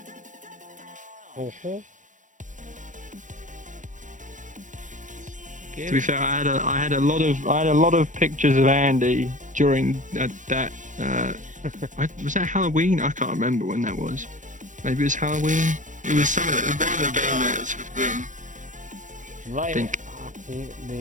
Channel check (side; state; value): left; late; 0.37 ms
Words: To be fair, I had a lot of pictures of Andy during that. Was that Halloween? I can't remember when that was. Maybe it was Halloween. It was some of the one of the banners with them. Like, Think.